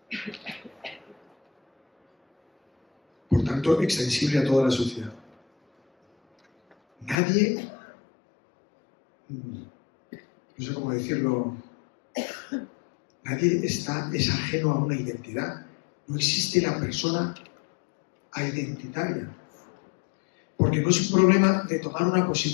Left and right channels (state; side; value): drops out; right; at 7.2 s